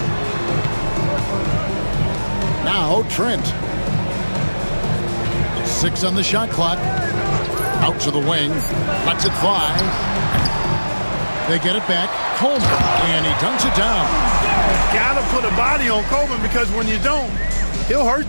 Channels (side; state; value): both; inverted; correlation -1.00